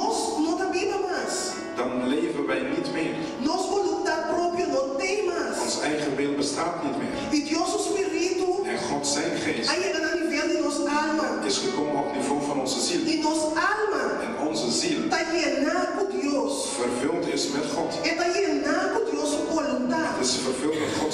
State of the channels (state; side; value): identical; both; correlation 1.00